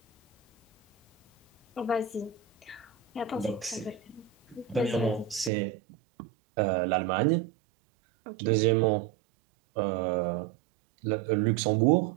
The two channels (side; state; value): left; drops out; at 5.5 s